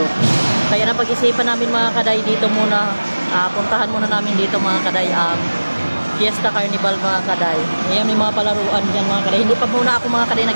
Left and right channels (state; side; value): inverted; both; correlation -1.00